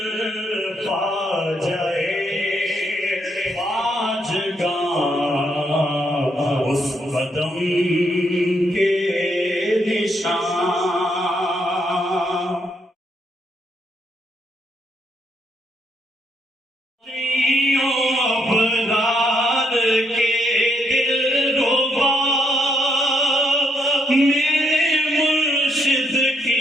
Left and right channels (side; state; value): both; normal; correlation 0.75